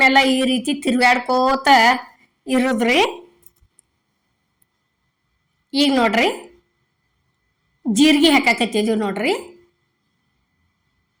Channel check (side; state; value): both; identical; correlation 1.00